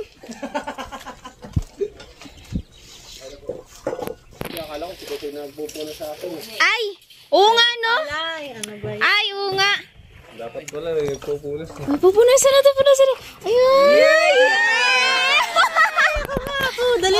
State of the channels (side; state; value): both; identical; correlation 1.00